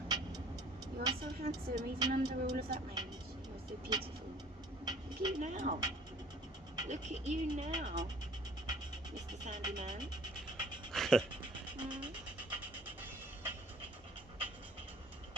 You are so handsome, even under all of that range. You are so beautiful. Look at you now. Look at you now, Mr. Sandyman.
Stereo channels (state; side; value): normal; both; correlation 0.52